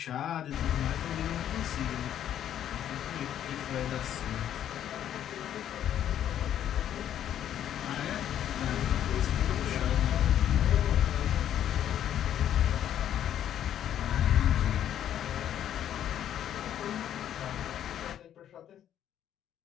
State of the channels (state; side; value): quieter; right; 10.5 dB